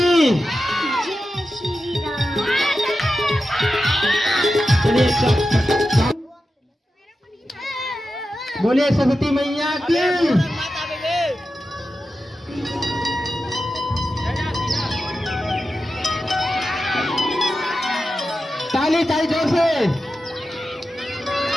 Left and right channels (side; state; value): both; normal; correlation 0.91